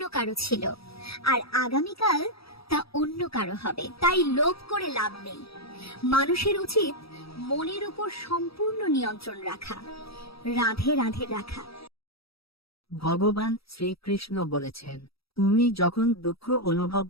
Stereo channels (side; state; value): right; late; 0.76 ms